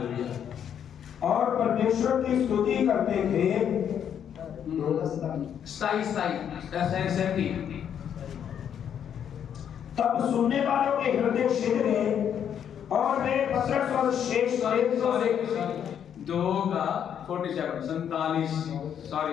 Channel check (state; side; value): quieter; right; 8.8 dB